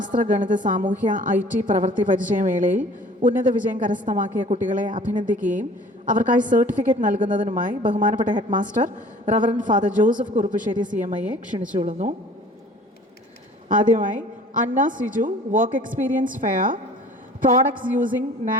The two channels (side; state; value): both; normal; correlation 0.49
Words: ഗണിത സാമൂഹ്യ IT പ്രവൃത്തി പരിചയമേളയിൽ ഉന്നത വിജയം കരസ്ഥമാക്കിയ കുട്ടികളെ അഭിനന്ദിക്കുകയും അവർക്കായി സർട്ടിഫിക്കറ്റ് നൽകുന്നതിനുമായി ബഹുമാനപ്പെട്ട head master reverend father Joseph Kuruppassery CMIയെ ക്ഷണിച്ചുകൊള്ളുന്നു. ആദ്യമായി Anna Siju work experience fair products using